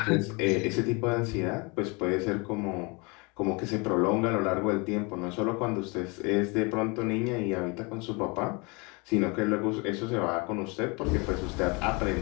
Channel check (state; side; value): quieter; right; 29.1 dB